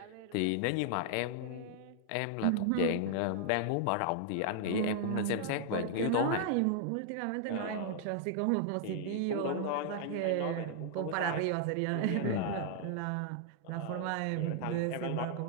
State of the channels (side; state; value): both; different; correlation -0.01